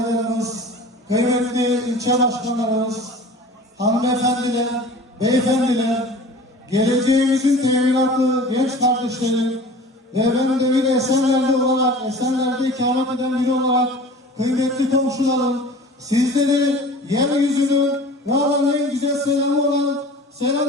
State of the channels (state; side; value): normal; both; correlation 0.41